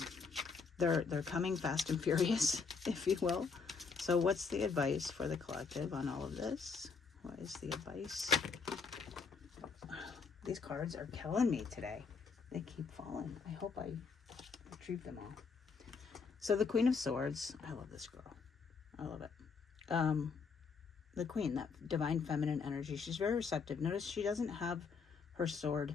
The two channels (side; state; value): right; quieter; 5.2 dB